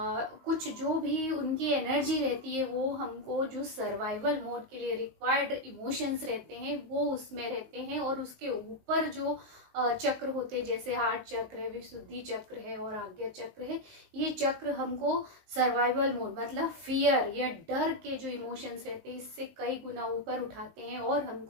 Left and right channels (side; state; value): left; late; 19 ms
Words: जो भी उनकी एनर्जी रहती है वो हमको जो सर्वाइवल मोड के लिए रिक्वायर्ड इमोशंस रहते हैं वो उसमें रहते हैं। और उसके ऊपर जो चक्र होते हैं जैसे हार्ट चक्र है, विशुद्धि चक्र है और आज्ञा चक्र है, ये चक्र हमको सर्वाइवल मोड मतलब फियर या डर के जो इमोशंस रहते हैं इससे कई गुना ऊपर उठाते हैं और